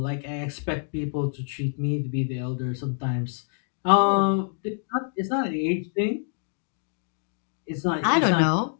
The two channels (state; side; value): silent; right; 61 dB below the other